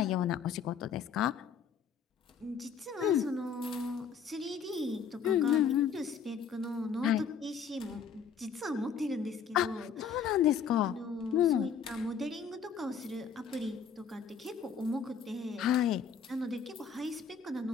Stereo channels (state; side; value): quieter; right; 6.6 dB